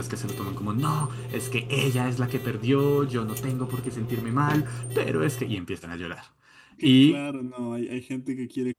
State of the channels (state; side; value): identical; both; correlation 1.00